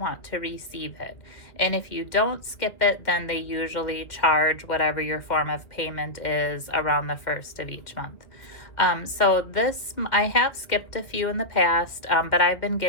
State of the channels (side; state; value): right; late; 2.1 ms